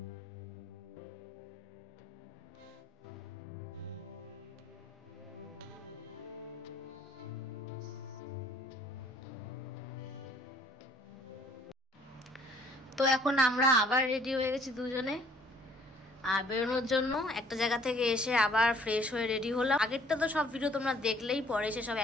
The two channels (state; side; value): normal; both; correlation 0.57